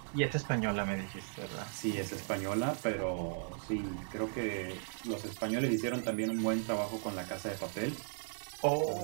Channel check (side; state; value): left; silent; 53 dB below the other